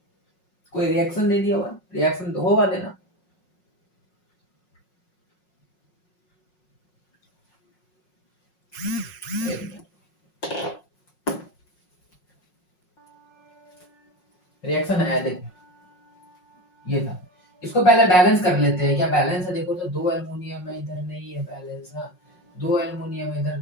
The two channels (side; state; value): right; late; 5.5 ms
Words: कोई रिएक्शन नहीं दिया हुआ, रिएक्शन तो होगा देना, रिएक्शन है, देखो ये था। इसको पहले बैलेंस कर लेते हैं, क्या बैलेंस है, देखो तो 2 एल्युमिनियम है, इधर नहीं है बैलेंस ना, 2 एल्युमिनियम इधर,